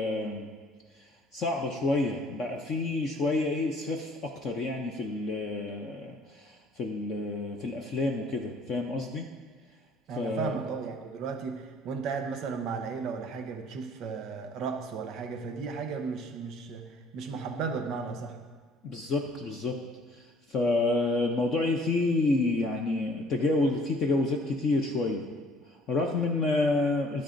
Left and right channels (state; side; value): normal; both; correlation 0.57